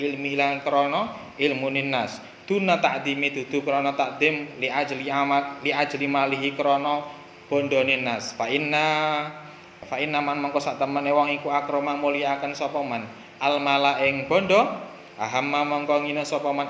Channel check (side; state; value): both; identical; correlation 1.00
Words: ilmi lan krana ilmunin nas duna takdimi dudu krana takdim li ajli malihi krana bondone nas fa inna man mangko sak temene wong iku akrama mulyakaken sapa man al mala ing bondo ahamma mangko ngina sapa man